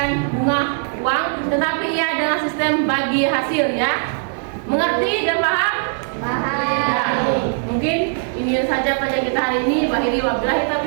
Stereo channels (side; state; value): left; silent; 58 dB below the other